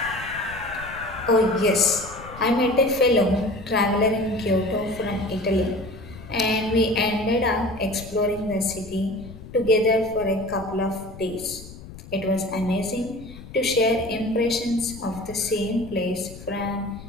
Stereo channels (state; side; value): noise; left; rumble, 15 dB below the sound